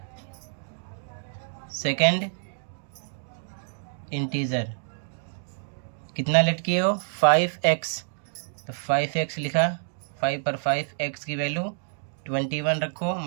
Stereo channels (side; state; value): left; silent; digital silence